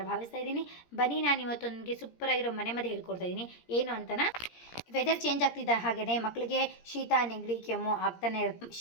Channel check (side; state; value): right; late; 17 ms